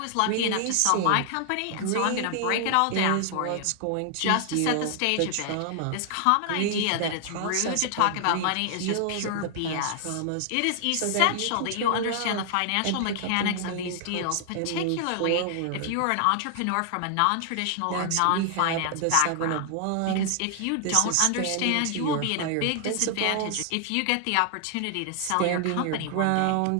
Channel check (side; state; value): both; different; correlation 0.00